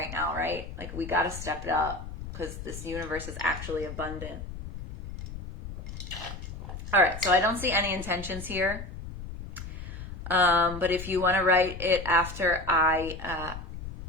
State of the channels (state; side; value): noise; left; rumble, 10 dB below the sound